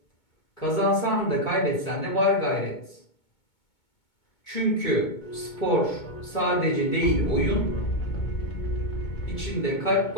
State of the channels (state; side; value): late; right; 2.2 ms